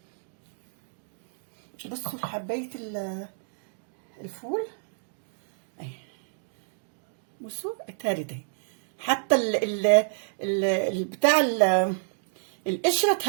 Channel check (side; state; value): left; silent; digital silence